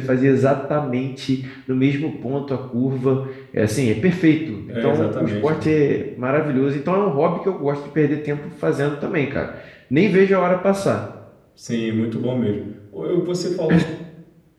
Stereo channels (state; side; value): identical; both; correlation 1.00